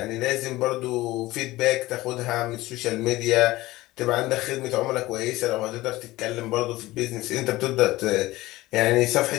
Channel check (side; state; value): right; quieter; 18.2 dB